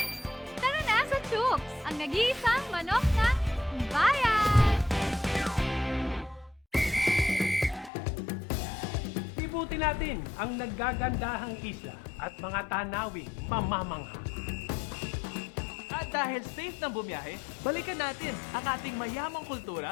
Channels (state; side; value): drops out; right; at 7.9 s